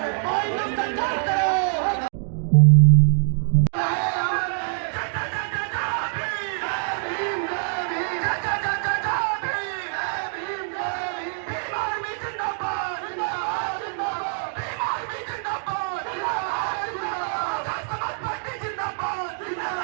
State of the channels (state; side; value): silent; left; digital silence